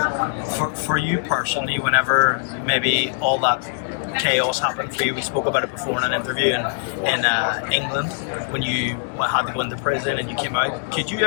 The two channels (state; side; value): silent; right; 63 dB below the other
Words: For you personally, whenever maybe all that chaos happened for you, we spoke about it before in an interview in England when you had to go into prison and you came out. Could you